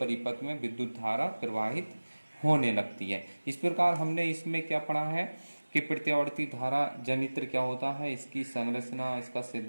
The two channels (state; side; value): inverted; both; correlation -1.00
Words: में विद्युत धारा प्रवाहित होने लगती है। इस प्रकार हमने इसमें क्या पढ़ा है कि प्रत्यावर्ती धारा जनित्र क्या होता है, इसकी संरचना, इसका